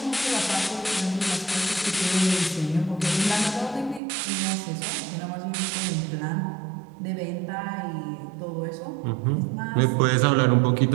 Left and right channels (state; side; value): drops out; left; at 4.0 s